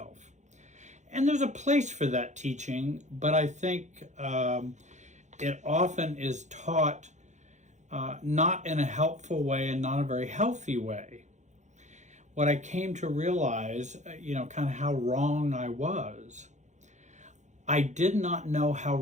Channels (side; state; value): left; late; 0.34 ms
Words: And there's a place for that teaching, but I think it often is taught not in a helpful way and not a very healthy way. What I came to realize, kind of how wrong I was. I did not know how